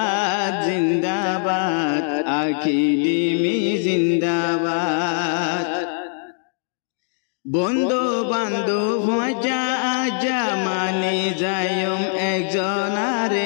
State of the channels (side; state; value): right; silent; digital silence